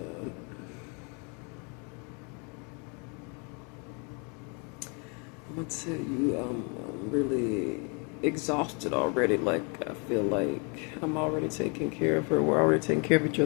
I'm gonna tell you, I'm really exhausted already. Like, I feel like I'm already taking care of her. We're already taking care of each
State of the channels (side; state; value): right; quieter; 34.4 dB